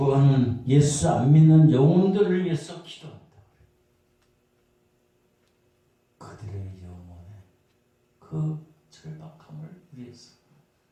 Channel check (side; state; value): both; identical; correlation 1.00